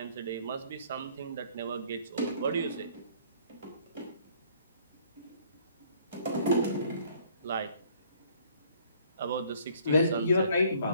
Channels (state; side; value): inverted; both; correlation -0.59